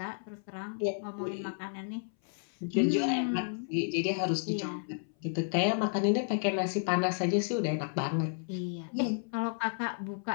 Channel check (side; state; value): right; silent; 56 dB below the other